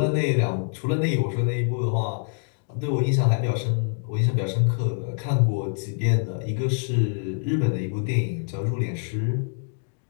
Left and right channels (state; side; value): silent; right; digital silence